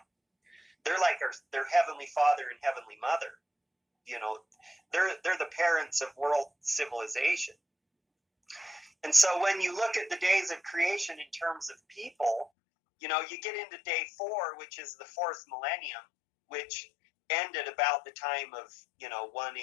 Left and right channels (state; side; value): drops out; right; at 12.5 s